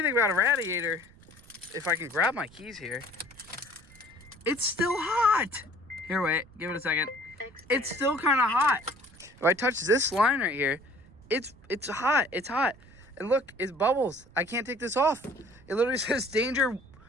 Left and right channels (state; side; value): noise; right; rumble, 24 dB below the sound